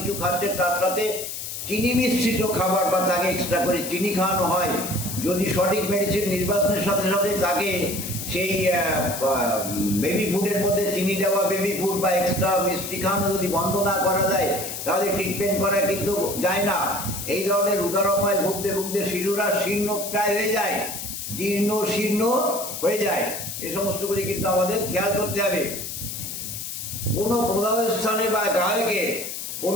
খাচ্ছে, তার সাথে চিনি মিশ্রিত খাবার বা তাকে এক্সট্রা করে চিনি খাওয়ানো হয়। যদি সঠিক মেডিসিন নির্বাচনের সাথে সাথে তাকে সেই বেবি ফুডের মধ্যে চিনি দেওয়া বেবি ফুড বা এক্সট্রা মিষ্টি খাওয়ানো যদি বন্ধ না করা যায়, তাহলে ট্রিটমেন্ট করা কিন্তু যায় না। এই ধরনের উদারময় ভুগতে শিশুরা শীর্ণ প্রায় হয়ে যায়, জীর্ণ শীর্ণ হয়ে যায়। এই সমস্তগুলি কিন্তু আমাদের খেয়াল করতে হবে। কোনো প্রদাহ স্থানে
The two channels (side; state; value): left; noise; hiss, 7 dB below the sound